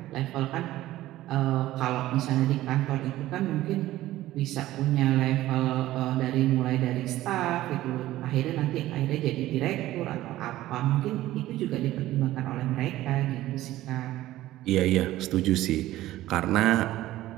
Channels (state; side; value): quieter; left; 15.4 dB